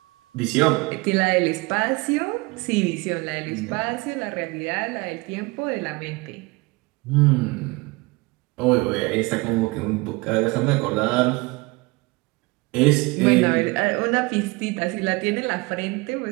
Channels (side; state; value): left; quieter; 24.7 dB